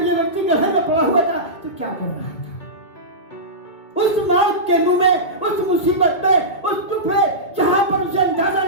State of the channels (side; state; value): right; late; 2.4 ms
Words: ये व्यक्ति गड्ढे में पड़ा हुआ था, तो क्या कर रहा था? उस मौत के मुंह में, उस मुसीबत में, उस दुख में, जहां पर उसे अंदाजा